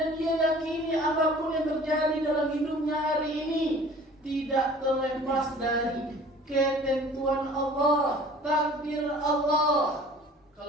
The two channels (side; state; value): both; normal; correlation 0.48